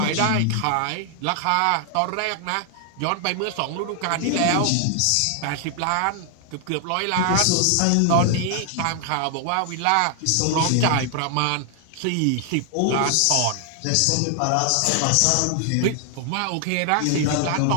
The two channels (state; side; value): different; both; correlation 0.00